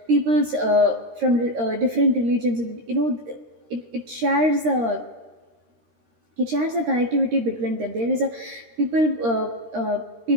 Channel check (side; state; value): left; late; 13 ms